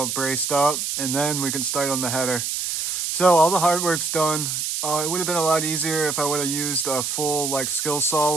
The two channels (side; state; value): right; noise; hiss, 2 dB below the sound